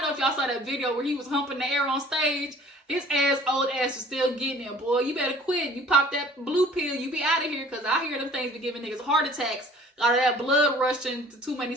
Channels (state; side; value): normal; both; correlation 0.50